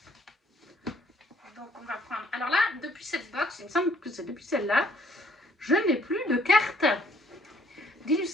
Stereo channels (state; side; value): normal; both; correlation 0.62